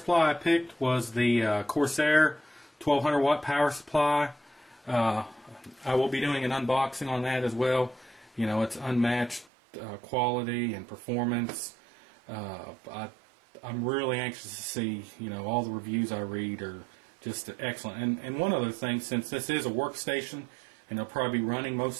I picked was the Corsair 1200 watt power supply. I will be doing an unboxing on that as well. It's unmatched quality and performance. I'm really anxious to see, all the reviews I read are just excellent. And one other thing, since this is a workstation and it'll probably be running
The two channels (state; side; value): drops out; left; at 9.5 s